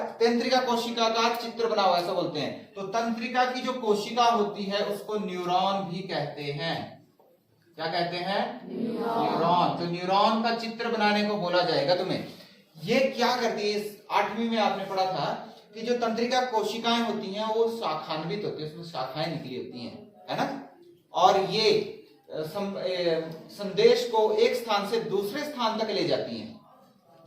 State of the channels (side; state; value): both; identical; correlation 1.00